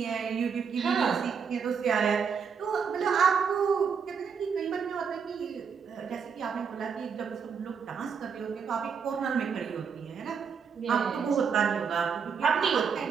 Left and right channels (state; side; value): quieter; left; 6.4 dB